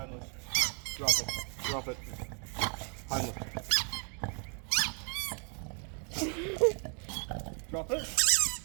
Drop it. Drop it. Homeless. Drop it.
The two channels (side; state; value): left; quieter; 39.6 dB